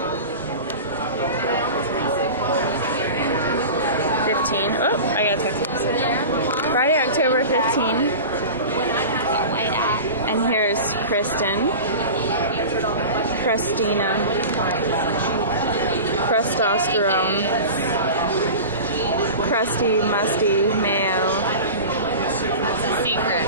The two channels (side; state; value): both; inverted; correlation -0.32